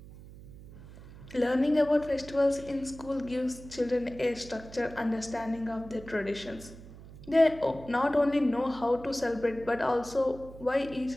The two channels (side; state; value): right; noise; hum, 17 dB below the sound